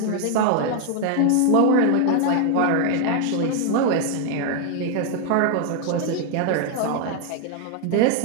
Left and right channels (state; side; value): different; both; correlation 0.00